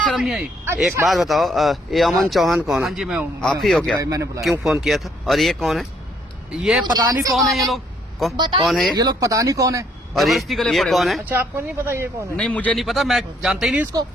नहीं आई? एक बात बताओ, ये अमन चौहान कौन हाँ है? जी मैं हूँ। आप ही हो क्या? मैंने बुलाया। क्यों फोन किया था? और ये कौन है? ये पता नहीं कौन है ये लोग। कौन है ये लोग पता नहीं कौन है। और जबरदस्ती गले ये पड़े कौन हुए। है? अच्छा, आपको नहीं पता ये कौन है? नहीं मुझे नहीं पता, मैं जानता ही नहीं इसको,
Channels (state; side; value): normal; both; correlation 0.68